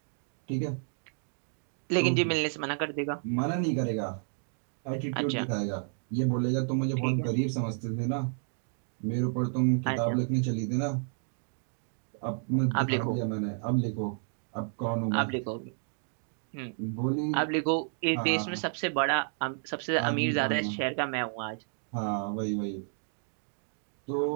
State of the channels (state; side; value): silent; left; 57 dB below the other